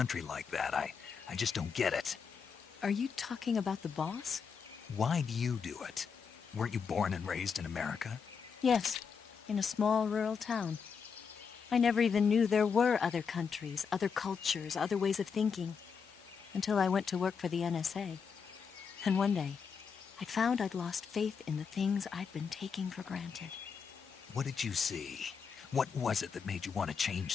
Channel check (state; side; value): quieter; right; 6.1 dB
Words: like that, I just don't get it. Are you talking about the boss? Why do you do it? Weren't you born and raised in America? Yes, in a small rural town. I never even knew there were other countries, other cultures, other ways of thinking, until I went to work for the NSA. And one day, I found I'd lost faith in the things I'd been taking for granted. What did you see? What was it that made you want to change